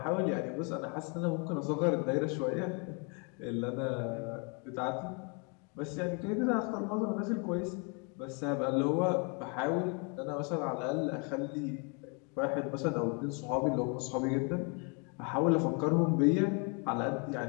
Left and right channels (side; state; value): right; quieter; 35.1 dB